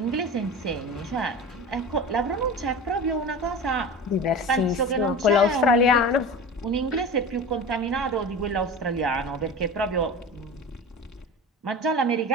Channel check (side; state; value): both; normal; correlation 0.32